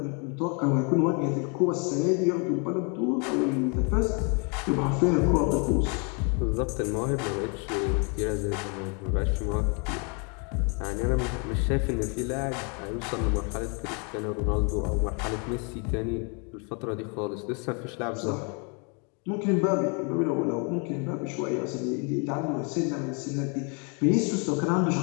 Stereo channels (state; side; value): quieter; right; 35.7 dB